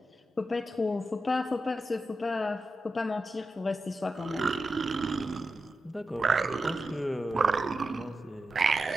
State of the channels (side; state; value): both; normal; correlation 0.89